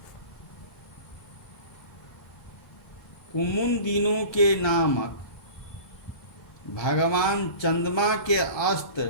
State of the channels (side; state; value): right; late; 1.3 ms